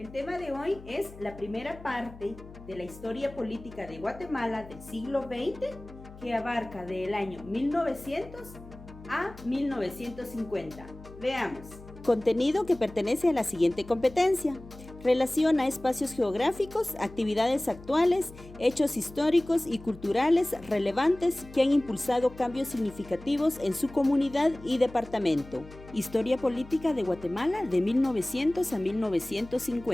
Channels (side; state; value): left; noise; hum, 18 dB below the sound